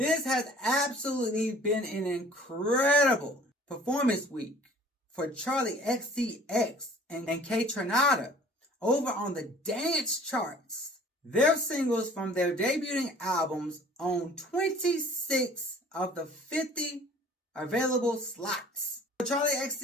has absolutely been an incredible performance week for Charlie XCX and K Tronada over on the dance charts. Their singles from their debuting albums own 26 of the 50 available slots. Charlie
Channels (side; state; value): both; normal; correlation 0.50